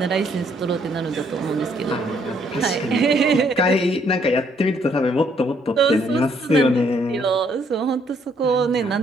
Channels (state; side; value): normal; both; correlation 0.68